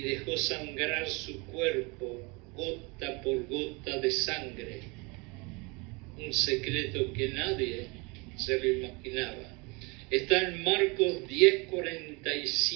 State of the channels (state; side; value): quieter; left; 28.1 dB